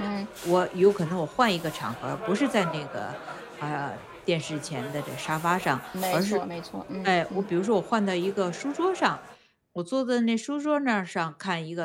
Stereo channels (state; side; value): identical; both; correlation 1.00